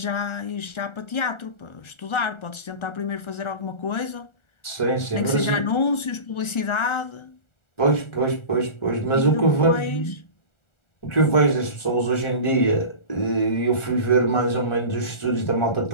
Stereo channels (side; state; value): right; late; 1.4 ms